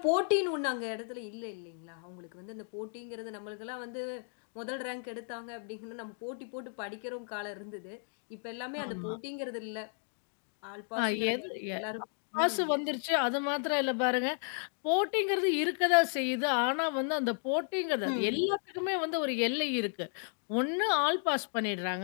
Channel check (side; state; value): right; silent; 55 dB below the other